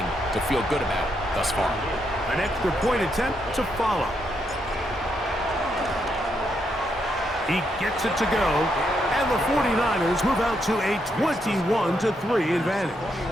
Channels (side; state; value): both; normal; correlation 0.79